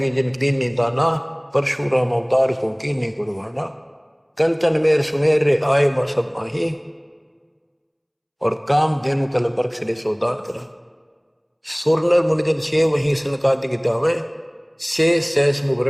जिन दीन नहीं दाना, परशुराम अवतार को की नहीं कुर्बाना। कंचन मेर सुमेर रे आए सब माही, और काम धेनु कल बरक्ष रे सोदान करा। सुरनर मुनिजन छे वही सनकादि की दावे, से सैस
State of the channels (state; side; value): identical; both; correlation 1.00